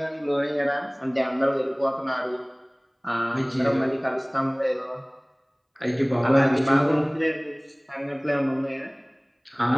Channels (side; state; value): both; identical; correlation 1.00